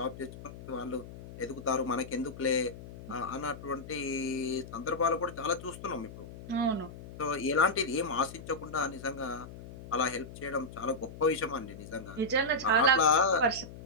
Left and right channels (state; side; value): noise; left; hum, 14 dB below the sound